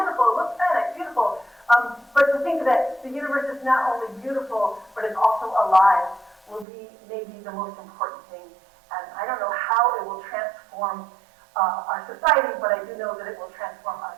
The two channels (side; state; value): left; drops out; at 6.7 s